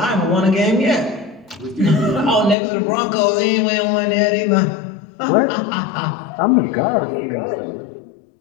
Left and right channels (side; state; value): right; drops out; at 2.6 s